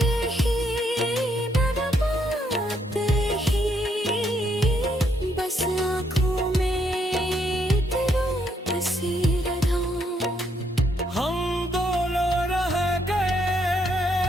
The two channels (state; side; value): normal; both; correlation 0.73